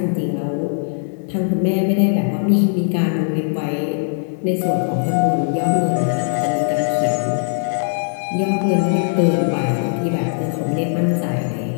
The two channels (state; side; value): silent; right; digital silence